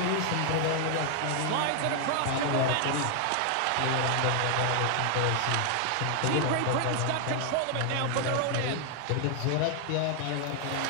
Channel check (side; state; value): both; different; correlation 0.00